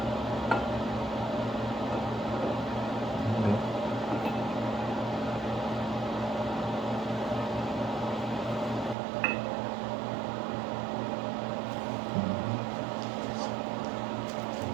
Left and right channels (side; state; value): left; drops out; at 9.0 s